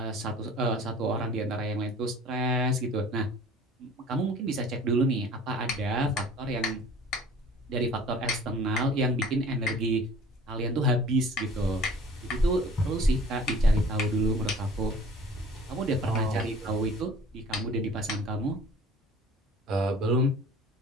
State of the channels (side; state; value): both; normal; correlation 0.47